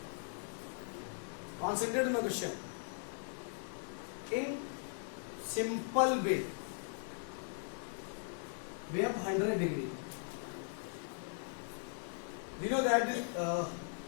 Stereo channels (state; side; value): silent; right; digital silence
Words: Concentrate on the question. In simple way, we have 100 degree. We know that